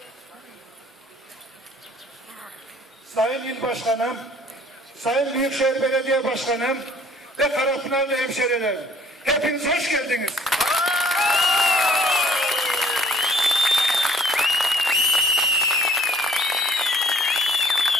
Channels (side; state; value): both; normal; correlation 0.57